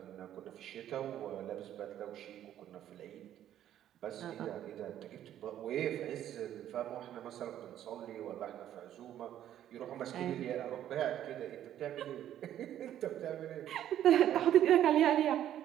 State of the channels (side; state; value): left; quieter; 11.3 dB